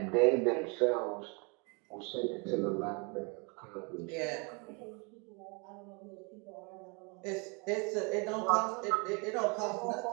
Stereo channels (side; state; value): left; quieter; 32.3 dB